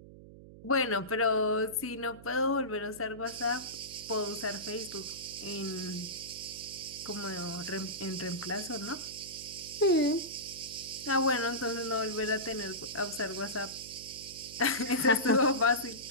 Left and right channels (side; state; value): right; noise; hum, 17 dB below the sound